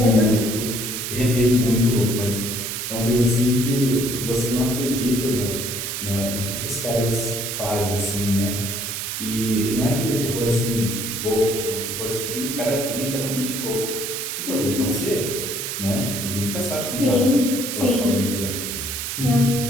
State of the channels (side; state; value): right; noise; hiss, 4 dB below the sound